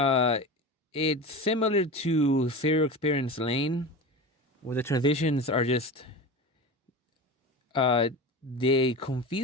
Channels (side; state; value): both; normal; correlation 0.29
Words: similar to Serial Experience Lane, where the transitions are just they